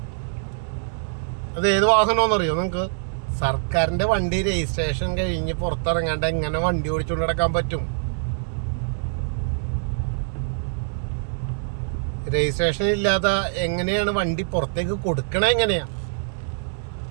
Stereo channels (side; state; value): left; silent; digital silence